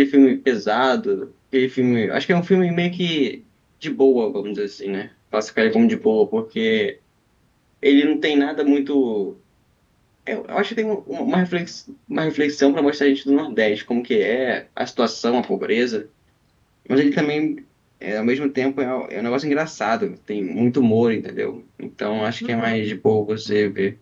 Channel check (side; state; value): both; identical; correlation 1.00